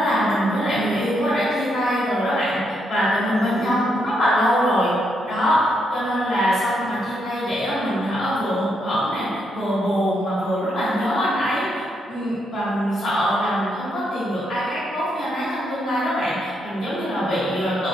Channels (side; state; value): both; normal; correlation 0.78